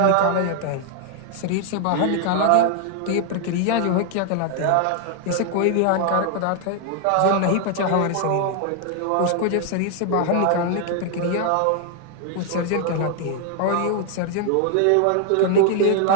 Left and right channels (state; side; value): different; both; correlation 0.00